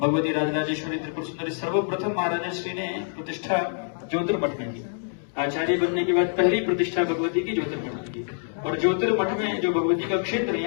राजराजेश्वरी त्रिपुर सुंदरी सर्वप्रथम महाराज श्री ने प्रतिष्ठा ज्योतिर्मठ में की। आचार्य बनने के बाद पहली प्रतिष्ठा भगवती की ज्योतिर्मठ में की, और ज्योतिर्मठ में जो भगवती का क्षेत्र है,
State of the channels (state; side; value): silent; right; 61 dB below the other